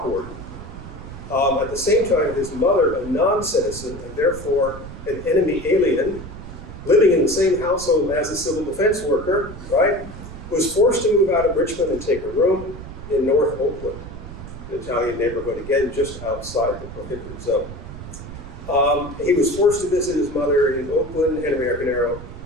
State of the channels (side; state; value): right; noise; rumble, 12 dB below the sound